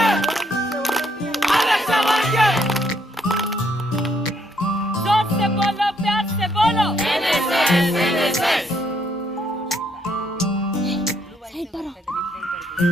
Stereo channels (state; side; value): normal; both; correlation 0.71